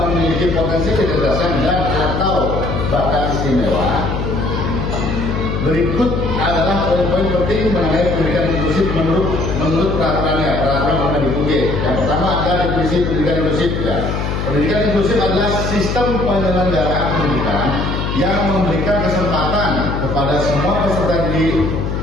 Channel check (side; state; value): left; noise; hum, 2 dB below the sound